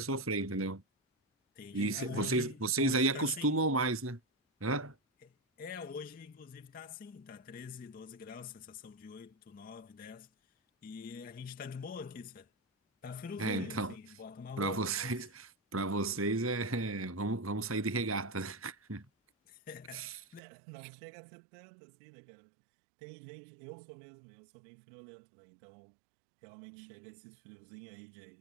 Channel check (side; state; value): left; drops out; at 20.4 s